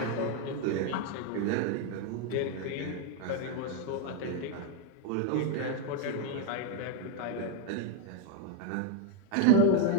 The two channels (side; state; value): both; different; correlation 0.01